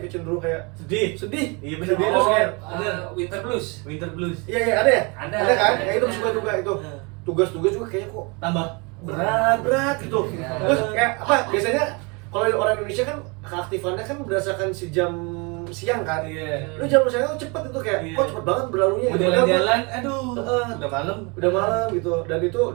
cenderung kayak sedih. Iya Sedih benar. terus kayak Winter blues. Winter blues. iya ada ya? Ada kan? ada. Ya itu suka juga itu. Tugas-tugas juga kayaknya kok Tambah berat gitu. Ya. Terus kayak apa? Biasanya kalau orang Indonesia kan keaktifannya kan berdasarkan si jam siang kan. Iya. Lu jam siang tuh cepet itu kayak kok cepet banget berlalunya. Mau gitu. jalan-jalan, aduh, udah malam. Udah malam gitu.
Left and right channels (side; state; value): left; quieter; 30.0 dB